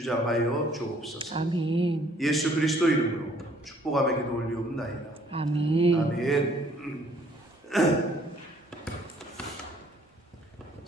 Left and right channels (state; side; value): normal; both; correlation 0.61